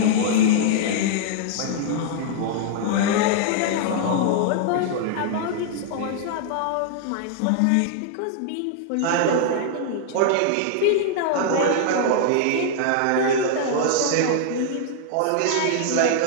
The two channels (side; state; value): both; different; correlation -0.01